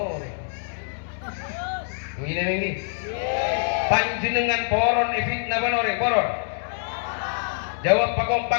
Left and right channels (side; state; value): right; silent; digital silence